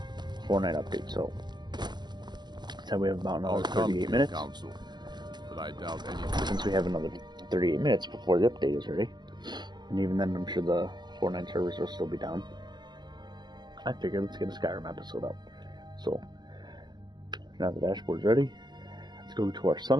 Fortnite update, so we have about another 38 minutes. Council, but I doubt anything. Since we have another 38 minutes before the update is ready. And even then I'm sure the Fortnite servers will still be down. I figured let's get a Skyrim episode up. So now the dashboard's ready. Let's go to our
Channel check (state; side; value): late; left; 0.21 ms